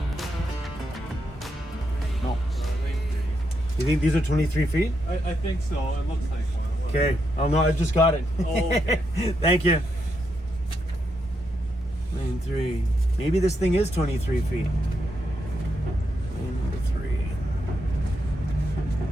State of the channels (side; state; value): both; normal; correlation 0.81